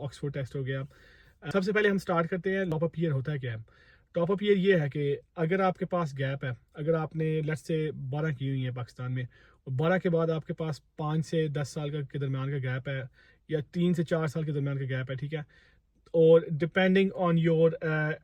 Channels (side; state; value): both; identical; correlation 1.00